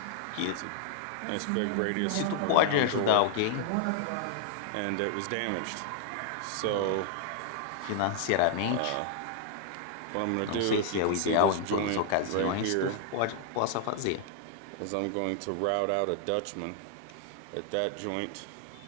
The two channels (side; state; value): both; different; correlation 0.00